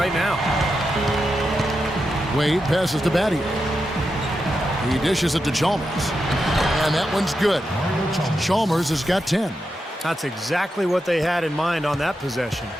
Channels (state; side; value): normal; both; correlation 0.87